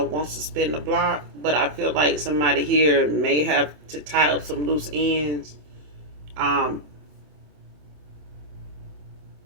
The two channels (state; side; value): late; left; 27 ms